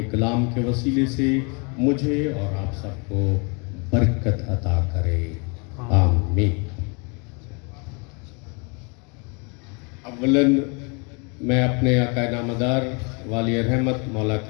कलाम के वसीले से मुझे और आप सबको बरकत अता करे, आमीन। अव्वलन मैं अपने आका नामदार वाली रहमत मौला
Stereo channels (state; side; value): quieter; right; 33.2 dB